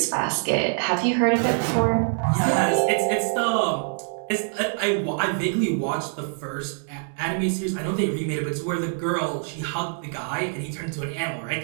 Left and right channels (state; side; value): silent; left; 62 dB below the other